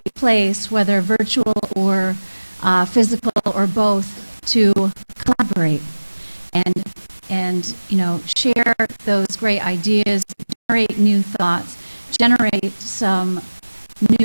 place, whether virtual or physical or both, to collaborate and you know, share those great ideas, generate new thoughts, generate some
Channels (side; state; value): both; inverted; correlation -1.00